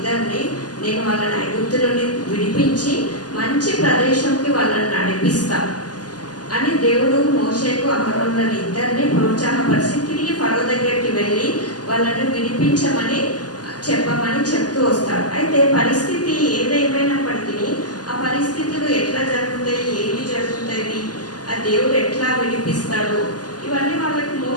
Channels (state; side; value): late; right; 0.69 ms